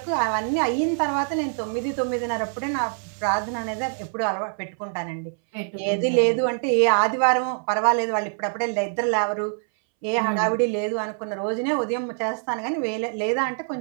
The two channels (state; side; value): silent; left; 62 dB below the other